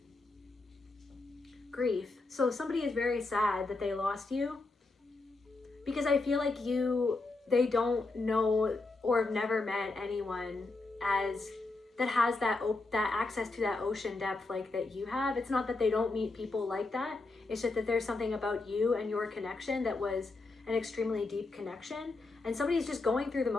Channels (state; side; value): quieter; right; 3.4 dB